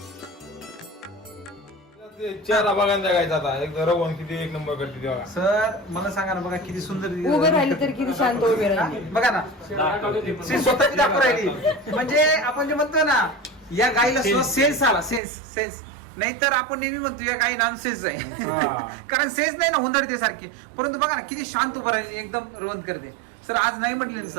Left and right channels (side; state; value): left; drops out; at 15.2 s